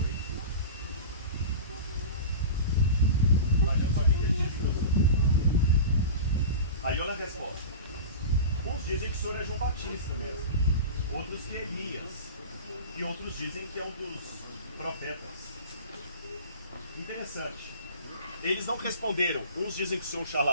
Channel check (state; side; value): inverted; both; correlation -0.32